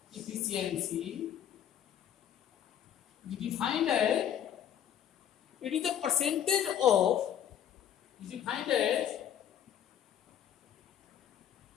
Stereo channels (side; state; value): right; quieter; 9.9 dB